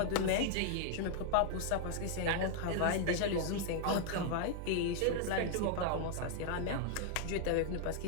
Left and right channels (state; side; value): different; both; correlation 0.00